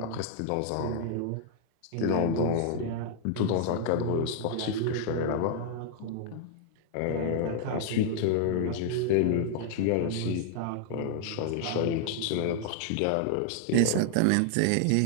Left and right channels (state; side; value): different; both; correlation 0.00